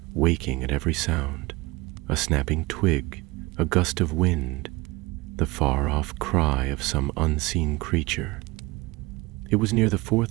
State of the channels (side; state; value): left; quieter; 22.5 dB